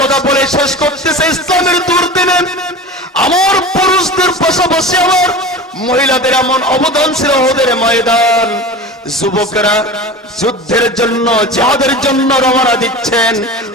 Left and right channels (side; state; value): both; normal; correlation 0.33